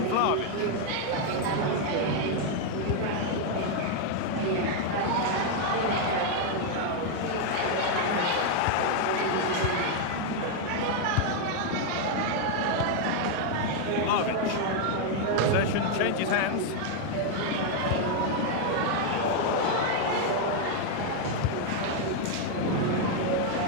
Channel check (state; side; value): different; both; correlation 0.01